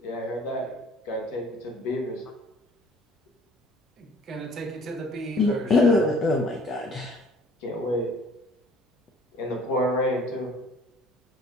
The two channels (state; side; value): normal; both; correlation 0.53